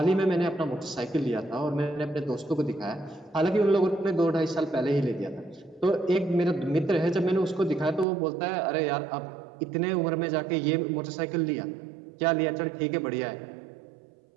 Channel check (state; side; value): drops out; left; at 8.1 s